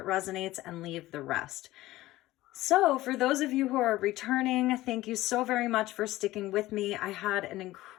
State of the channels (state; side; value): quieter; right; 16.9 dB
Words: resonates and leave the rest. So for those of you who are returning, thank you so very much for sticking with me. I had an